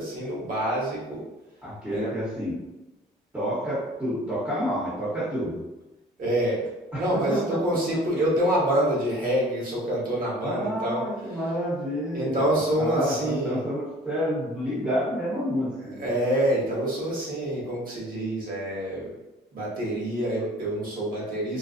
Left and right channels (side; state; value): both; normal; correlation 0.48